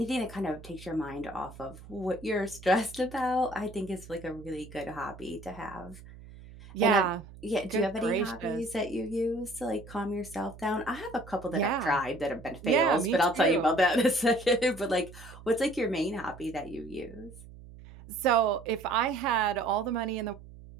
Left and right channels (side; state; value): right; noise; hum, 18 dB below the sound